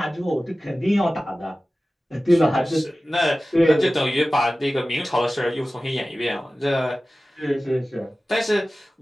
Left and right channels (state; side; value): normal; both; correlation 0.96